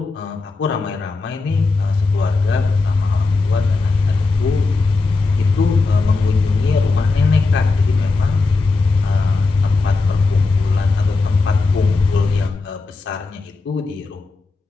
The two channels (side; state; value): right; quieter; 3.8 dB